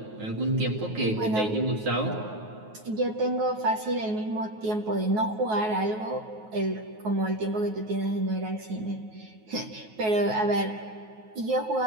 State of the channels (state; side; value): late; left; 9.4 ms